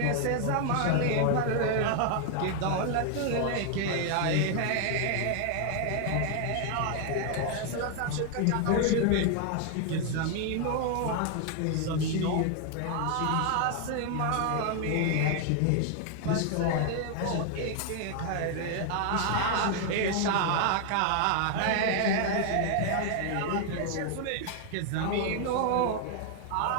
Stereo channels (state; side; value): different; both; correlation 0.00